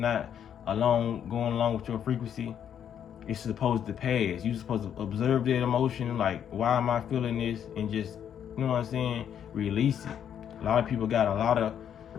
going along with your frequency, it's supposed to pass. You're supposed to observe that emotion, like, why am I feeling this? And just, you know what I'm saying, release it. A lot of people got a lot of,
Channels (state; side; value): quieter; right; 9.0 dB